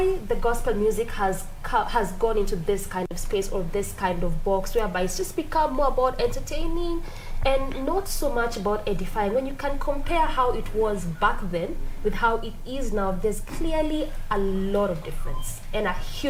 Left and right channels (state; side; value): identical; both; correlation 1.00